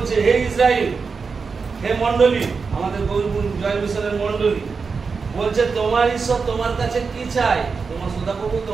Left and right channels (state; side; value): quieter; left; 5.0 dB